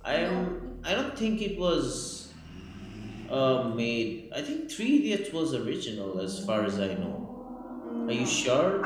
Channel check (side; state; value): both; identical; correlation 1.00